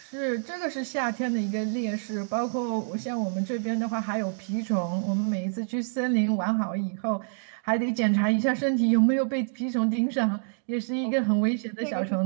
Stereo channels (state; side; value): silent; left; digital silence